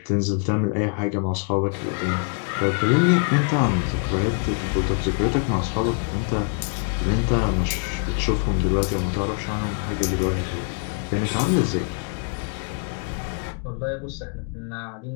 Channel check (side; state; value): right; quieter; 37.8 dB